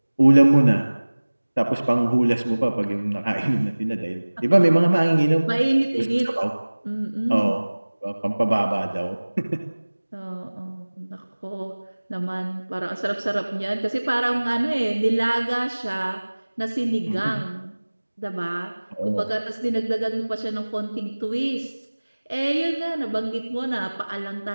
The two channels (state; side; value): inverted; both; correlation -1.00